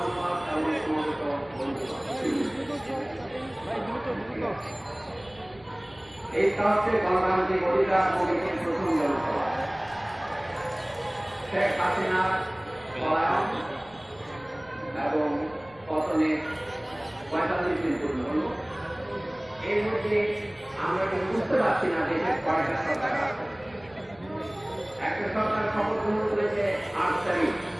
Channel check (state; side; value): noise; right; rumble, 26 dB below the sound